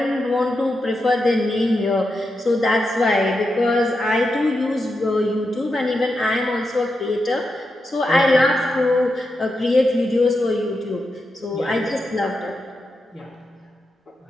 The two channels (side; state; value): both; normal; correlation 0.87